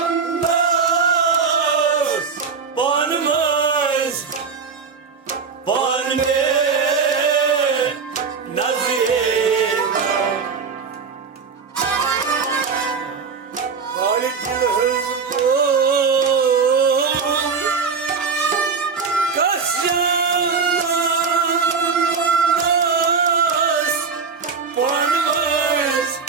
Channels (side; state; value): left; quieter; 5.4 dB